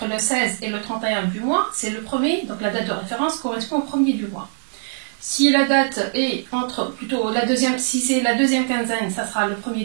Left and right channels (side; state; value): left; silent; 60 dB below the other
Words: le 16 et le 31 du mois, c'est le premier, donc la date de référence correspond au premier du mois. Si la date est si c'est la deuxième quinzaine, ça sera le